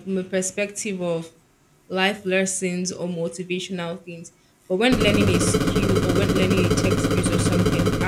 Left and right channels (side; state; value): both; identical; correlation 1.00